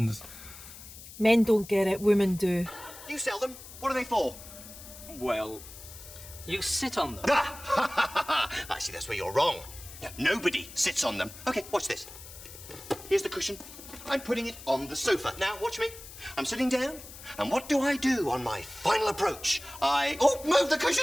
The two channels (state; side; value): noise; left; hiss, 15 dB below the sound